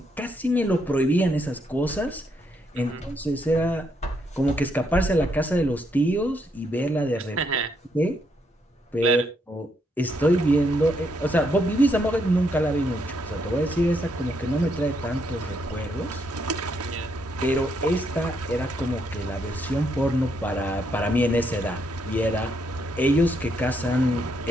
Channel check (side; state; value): both; normal; correlation 0.76